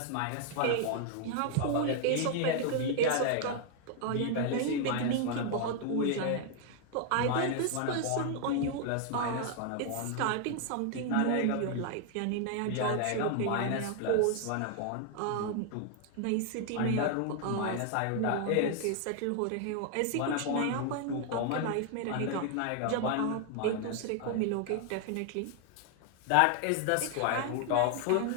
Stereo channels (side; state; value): both; different; correlation 0.00